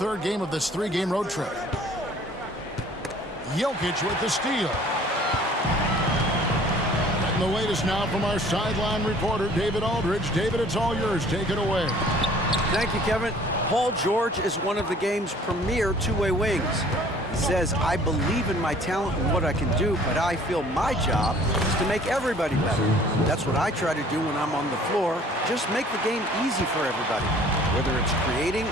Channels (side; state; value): both; normal; correlation 0.53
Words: game of this 3-game road trip. Jokic with the steal. And the latest now from our sideline reporter, David Aldridge. David, it's all yours. Take it away. Thank you, Kevin. Paul George is one of the game's premier two-way wings. He says, I believe in my talent and what I can do, but I feel my job is to make everybody better. That's what I try to do when I'm on the floor. Just make the game easy for everybody, whether it's creating